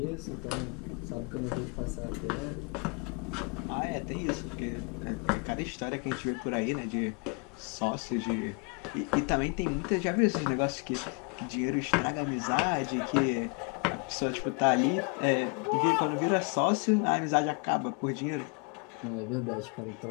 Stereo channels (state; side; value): quieter; right; 33.8 dB